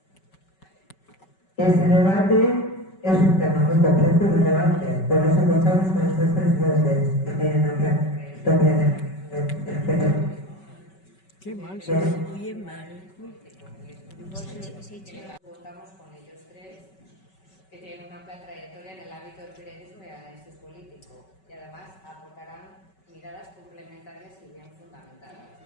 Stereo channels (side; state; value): right; late; 5.3 ms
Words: Este debate es un tema muy complejo y relevante, por eso contamos con estas tres voces que tienen una historia de Qué mal, se oye mal. Contamos con ellos tres, que tienen una amplia trayectoria en el ámbito del periodismo y análisis político, y además aportarán miradas complementarias y bien fundamentadas.